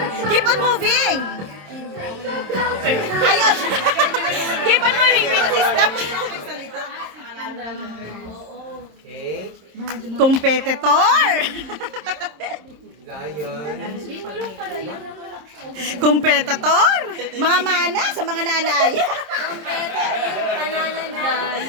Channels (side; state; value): left; late; 26 ms